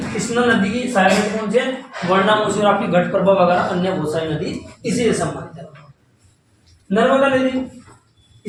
कृष्णा नदी की सहायक नदी कौन सी है? वर्ण, मूसी और आपकी घटप्रभा वगैरह अन्य बहुत सारी नदी इसी से संबंधित है। नर्मदा नदी,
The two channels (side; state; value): both; identical; correlation 1.00